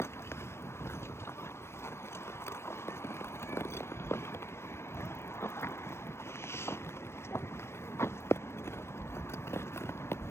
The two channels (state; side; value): late; right; 0.12 ms